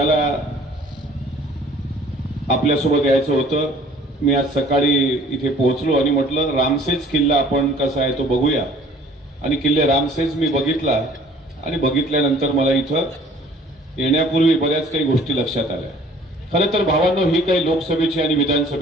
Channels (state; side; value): normal; both; correlation 0.53